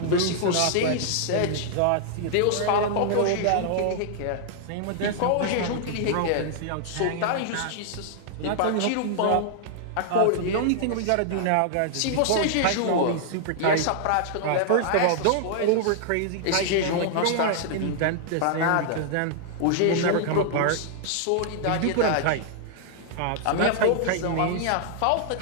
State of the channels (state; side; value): different; both; correlation -0.01